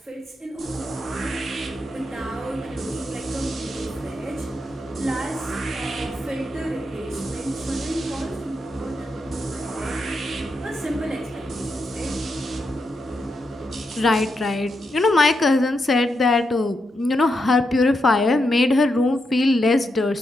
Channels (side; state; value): both; normal; correlation 0.84